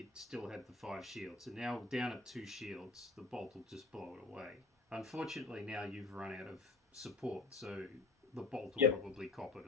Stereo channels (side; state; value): right; quieter; 3.7 dB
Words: still had the 5 shields. And now down at 2 shields, the bolt will just blow it away. Unfortunately, now you've run out of support, so the bolt will probably cop it